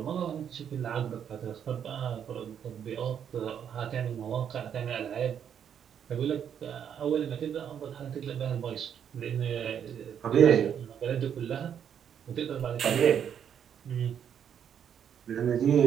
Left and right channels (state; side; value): quieter; left; 8.5 dB